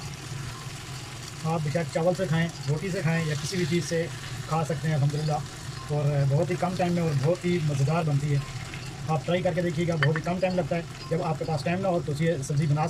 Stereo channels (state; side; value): identical; both; correlation 1.00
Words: आप बेशक चावल से खाएं, रोटी से खाएं या किसी भी चीज़ से खा सकते हैं अल्हम्दुलिल्लाह, और बहुत ही कम टाइम में और बहुत ही मज़ेदार बनती है। आप ट्राई करके देखिएगा, बहुत ही कम टाइम लगता है। जब आपके पास टाइम ना हो तो ये सब्ज़ी बना